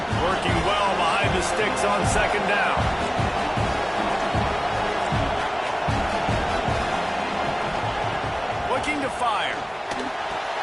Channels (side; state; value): both; identical; correlation 1.00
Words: Working well behind the sticks on second down. Looking to fire.